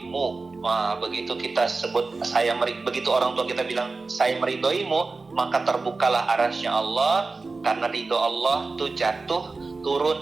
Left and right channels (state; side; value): quieter; left; 3.8 dB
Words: Wah, begitu kita sebut begitu orang tua kita bilang saya meridhoimu, maka terbukalah arasy Allah, karena ridho Allah itu jatuh